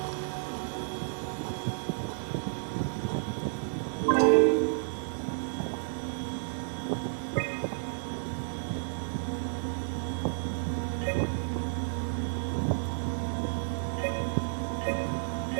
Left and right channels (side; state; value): left; silent; digital silence